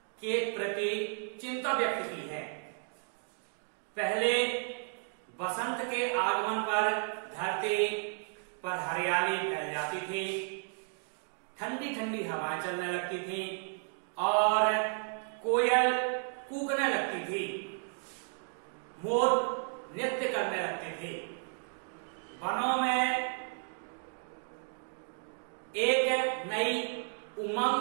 के प्रति चिंता व्यक्त की है। पहले बसंत के आगमन पर धरती पर हरियाली फैल जाती थी, ठंडी ठंडी हवाएं चलने लगती थी और कोयल कूकने लगती थी, मोर नृत्य करने लगते थे। वनों में एक नई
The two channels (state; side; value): silent; left; 55 dB below the other